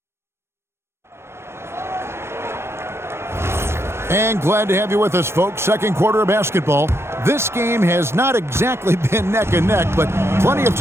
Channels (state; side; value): late; left; 0.12 ms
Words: And glad to have you with us, folks. Second quarter of basketball. This game has not exactly been neck and neck, but plenty of